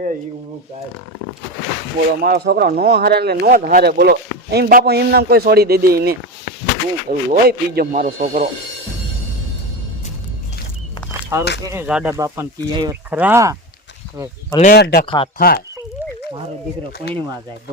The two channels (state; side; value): normal; both; correlation 0.21